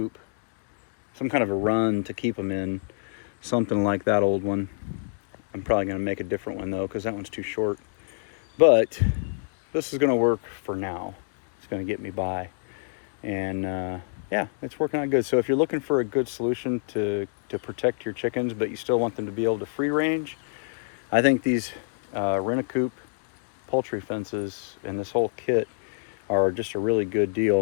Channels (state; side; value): silent; right; digital silence